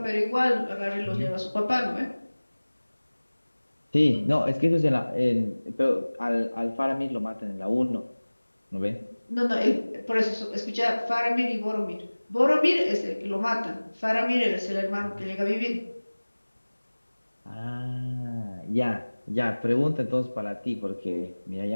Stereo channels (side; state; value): both; inverted; correlation -1.00